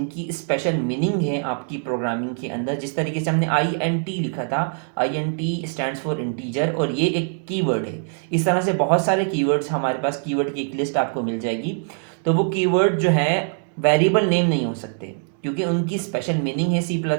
स्पेशल मीनिंग है आपकी प्रोग्रामिंग के अंदर, जिस तरीके से हमने INT लिखा था, INT स्टैंड्स फॉर इंटीजर, और ये एक कीवर्ड है। इस तरह से बहुत सारे कीवर्ड्स हमारे पास, कीवर्ड की एक लिस्ट आपको मिल जाएगी। तो वो कीवर्ड जो है वेरिएबल नेम नहीं हो सकते क्योंकि उनकी स्पेशल मीनिंग है C++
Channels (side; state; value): left; silent; 58 dB below the other